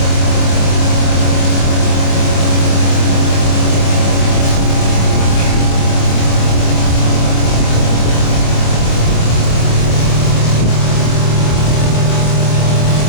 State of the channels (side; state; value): right; late; 25 ms